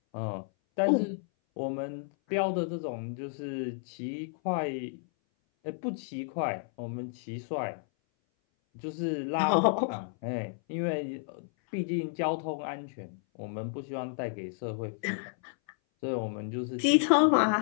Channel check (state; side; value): silent; right; 57 dB below the other